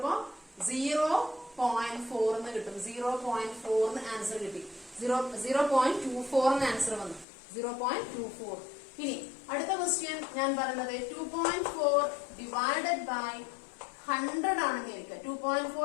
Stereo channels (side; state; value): right; drops out; at 7.2 s